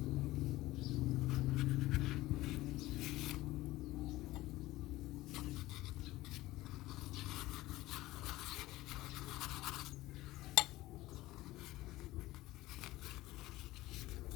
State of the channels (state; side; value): quieter; right; 17.6 dB